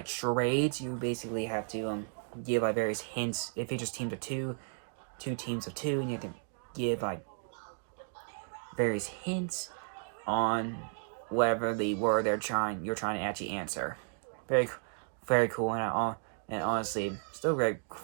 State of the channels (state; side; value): silent; left; 55 dB below the other